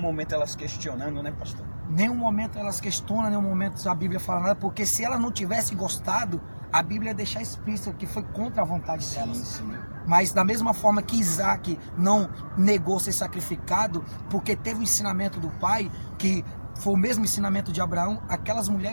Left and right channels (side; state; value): both; inverted; correlation -1.00